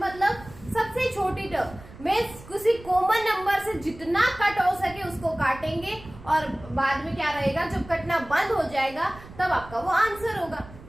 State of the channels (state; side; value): noise; right; rumble, 18 dB below the sound